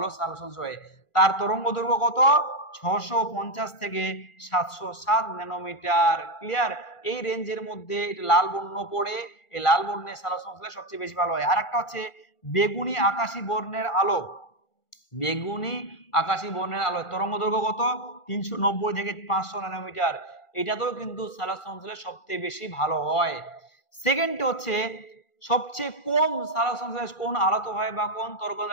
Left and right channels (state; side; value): late; right; 1.5 ms